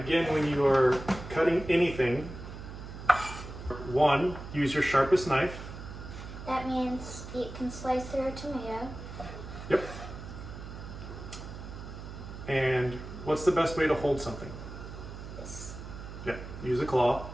when you are cutting anything, one, use your sharpest knife. That means it can slice through a tomato. Yep. And what's the best way to hold something? This. Yeah, use a claw.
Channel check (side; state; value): right; noise; hum, 11 dB below the sound